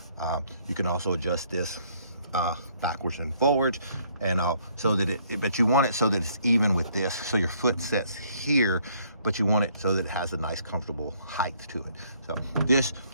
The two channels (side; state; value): both; inverted; correlation -0.65